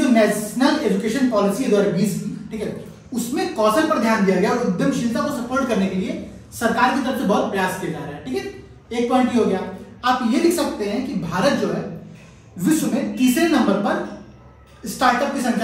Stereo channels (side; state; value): both; identical; correlation 1.00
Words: नेशनल एजुकेशन पॉलिसी है 2020 की, ठीक है, उसमें कौशल पर ध्यान दिया गया और उद्यमशीलता को सपोर्ट करने के लिए सरकार की तरफ से बहुत प्रयास किया जा रहा है। ठीक है, एक पॉइंट ये हो गया। आप ये लिख सकते हैं कि भारत जो है विश्व में तीसरे नंबर पर स्टार्टअप की